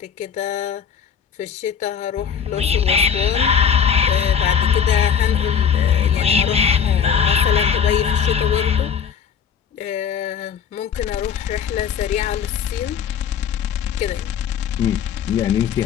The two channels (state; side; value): quieter; right; 7.5 dB